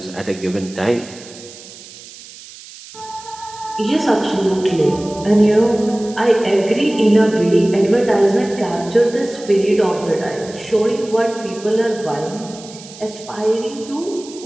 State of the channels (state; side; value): noise; right; hiss, 18 dB below the sound